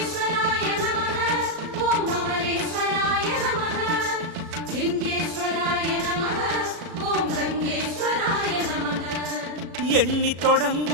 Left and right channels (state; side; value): late; left; 36 ms